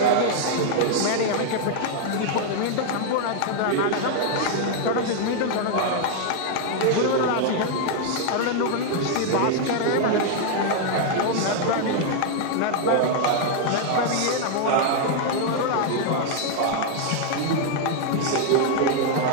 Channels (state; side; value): different; both; correlation 0.00